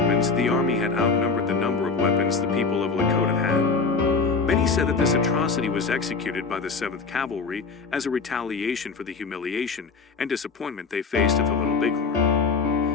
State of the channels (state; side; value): quieter; right; 4.6 dB